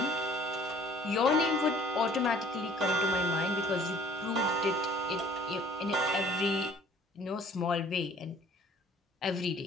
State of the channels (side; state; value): both; normal; correlation 0.53